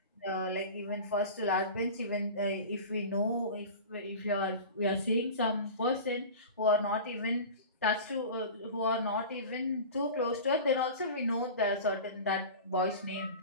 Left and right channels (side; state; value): both; inverted; correlation -0.33